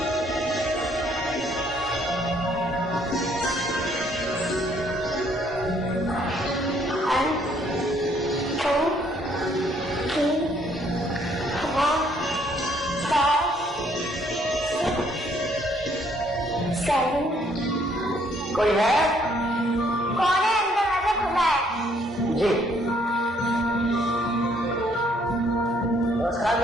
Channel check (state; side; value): normal; both; correlation 0.66